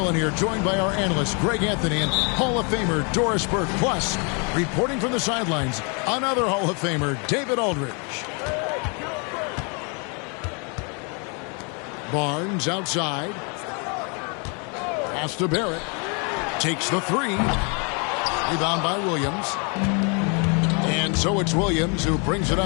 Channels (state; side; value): quieter; right; 35.4 dB